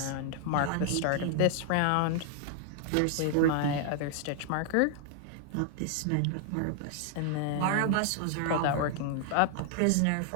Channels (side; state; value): both; different; correlation 0.00